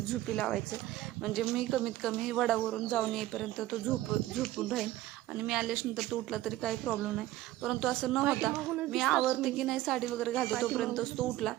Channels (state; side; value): quieter; left; 15.5 dB